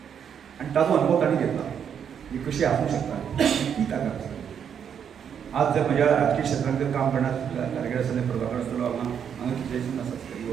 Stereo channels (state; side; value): quieter; left; 8.0 dB